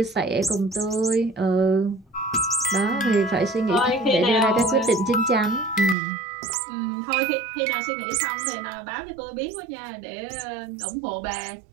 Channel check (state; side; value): drops out; left; at 6.0 s